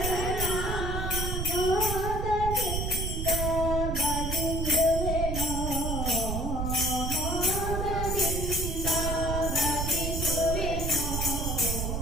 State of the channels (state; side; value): noise; right; rumble, 1 dB below the sound